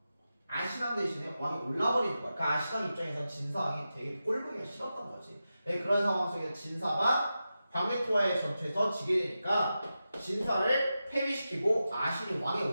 아신왕 대신에 왕이 올라버리는 거야. 그러니까 아신왕 입장에서는 진사왕이 되게 꼴보기가 싫었던 거지. 네, 그런 상황 속에서 진사가 광해토와의 전투에서 지게 되니까 진사를 패배시키고 아신이 왕에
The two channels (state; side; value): inverted; both; correlation -0.91